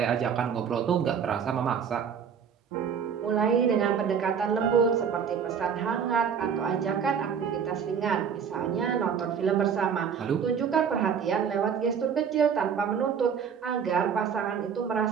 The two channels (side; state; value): left; quieter; 7.1 dB